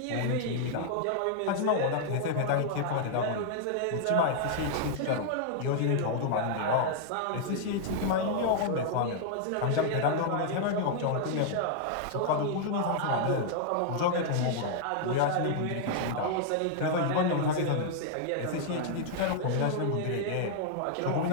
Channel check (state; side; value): different; both; correlation -0.01